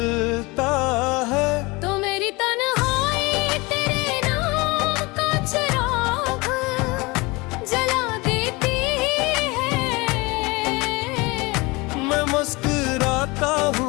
है तो मेरी तन्हाई तेरे नाम का चिराग जला देती है। मैं मुस्कुराता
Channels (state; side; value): quieter; right; 24.6 dB